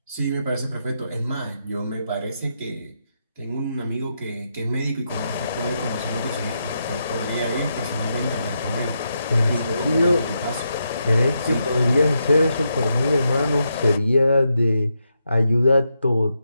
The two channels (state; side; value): inverted; both; correlation -0.83